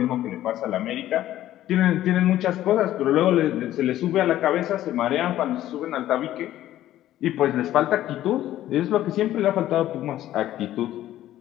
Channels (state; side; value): quieter; right; 13.4 dB